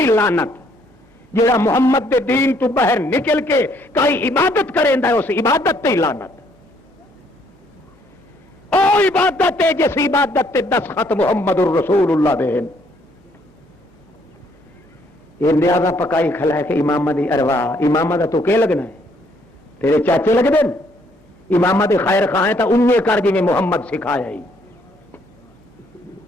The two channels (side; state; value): both; normal; correlation 0.67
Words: لعنت جڑا محمد دے دین تو باہر نکل کے کئی عبادت کریندا ہے اس عبادت تے لعنت او عبادت ہے جس عبادت تے دستخط محمد الرسول اللہ دے یہ نیازہ پکائی کھلا ہے کہ امامہ دی ارواح امامہ دا تو کہ لگنا ہے تیرے چاچے لگ دیں امامہ دی خیر خواہ ہیں تا انہیں کر جی میں محمد سکھایا ہی